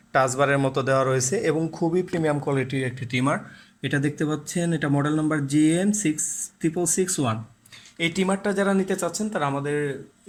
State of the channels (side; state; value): both; identical; correlation 1.00